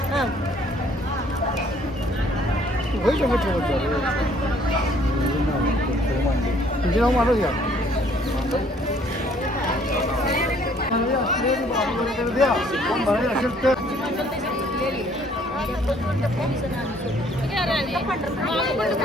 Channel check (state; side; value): normal; both; correlation 0.61